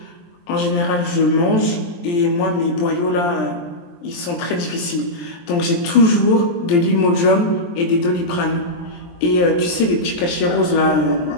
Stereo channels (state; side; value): late; right; 23 ms